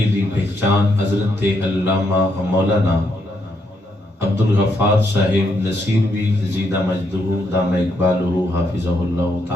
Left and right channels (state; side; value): normal; both; correlation 0.77